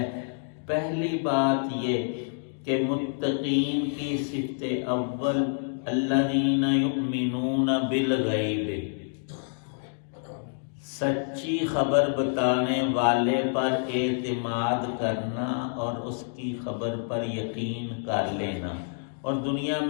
پہلی بات یہ کہ متقین کی صفت اول الذین یؤمنون بالغیب، سچی خبر بتانے والے پر اعتماد کرنا اور اس کی خبر پر یقین کر لینا۔ اور دنیا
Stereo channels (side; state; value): right; silent; digital silence